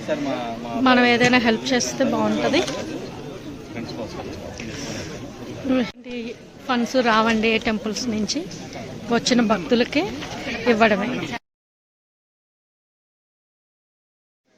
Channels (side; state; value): both; identical; correlation 1.00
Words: మనం ఏదైనా హెల్ప్ చేస్తే బాగుంటుంది. ఫండ్స్ రావండి టెంపుల్స్ నుంచి, వచ్చిన భక్తులకి ఇవ్వడమే.